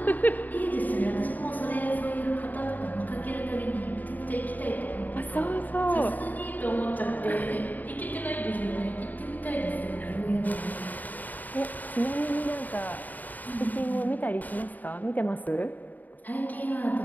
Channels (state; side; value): late; right; 0.083 ms